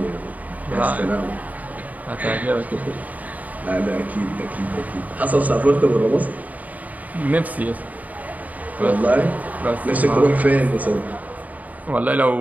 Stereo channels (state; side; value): late; left; 0.075 ms